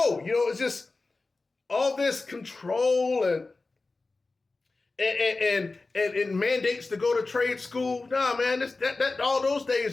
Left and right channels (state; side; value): quieter; right; 3.6 dB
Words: it's just all this control and mandates to go to trade school. Nah, man, that all those